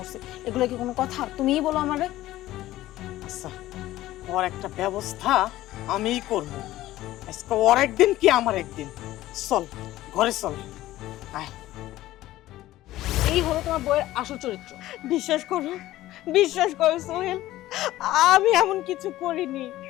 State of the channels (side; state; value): right; quieter; 15.5 dB